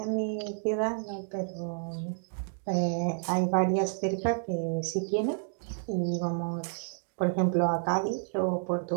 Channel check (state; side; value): silent; left; digital silence